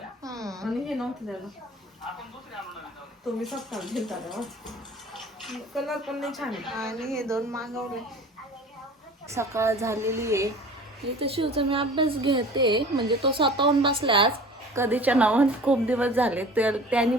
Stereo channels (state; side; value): normal; both; correlation 0.43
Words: आणि हे नव्हतं त्याला. तुम्ही सस्ता घेता कलर पण नाही छान आहे. आणि हे दोन मागवले. सकाळ झालेली आहे. इथं शिवचा मी अभ्यास घेते. म्हणजे तो स्वतःहून बसला आज कधीच्या नावात. खूप दिवस झाले तर त्यांनी